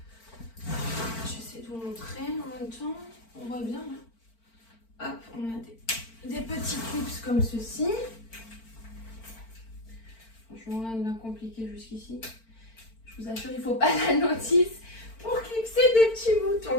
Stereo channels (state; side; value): late; right; 4.4 ms